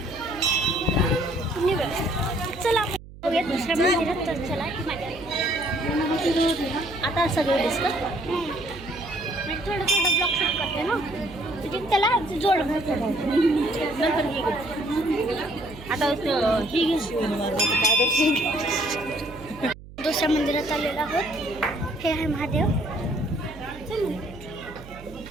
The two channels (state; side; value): noise; right; hum, 17 dB below the sound